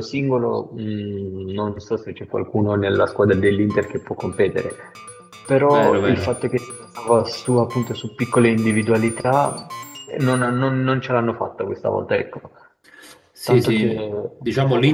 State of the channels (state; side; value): identical; both; correlation 1.00